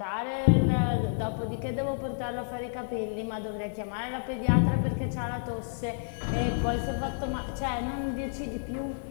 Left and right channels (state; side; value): silent; right; 58 dB below the other